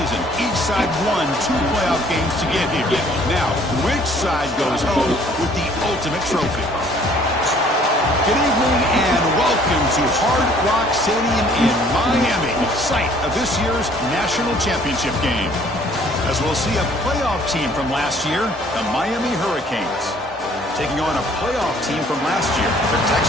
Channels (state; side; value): normal; both; correlation 0.58